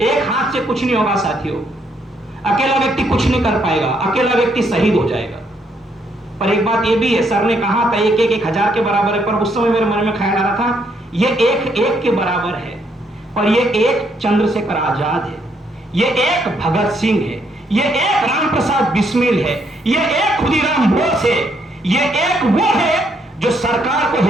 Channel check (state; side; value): normal; both; correlation 0.72